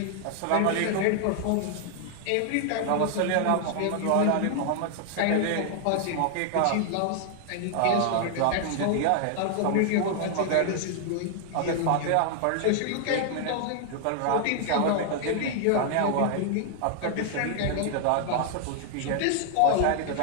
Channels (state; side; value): different; both; correlation 0.00